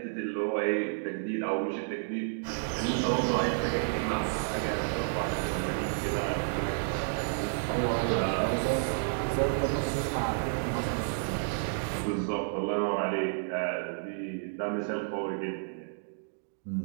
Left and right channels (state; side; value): silent; left; digital silence